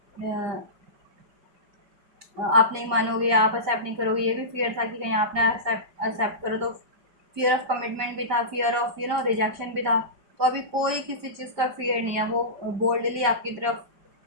आप नहीं मानोगे, आप एक्सेप्ट नहीं करोगे, ये भी फियर था कि कहीं आपने एक्सेप्ट करो तो। फियर ऑफ कमिटमेंट भी था, फियर ऑफ रिजेक्शन भी था। तो अभी कोई किसी चीज़ का फियर नहीं है, वो बोल्डली आपकी तरफ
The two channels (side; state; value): left; late; 5.1 ms